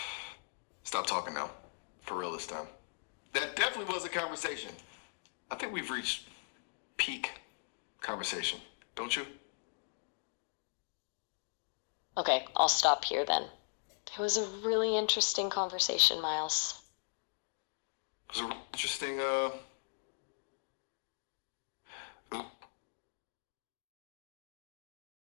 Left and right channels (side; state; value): right; silent; digital silence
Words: stop talking now. For real this time. That definitely was a conversation. I think we've reached peak conversation, don't you? Okay, I'll stop here then. It was a really interesting conversation, Miles. It was a really interesting,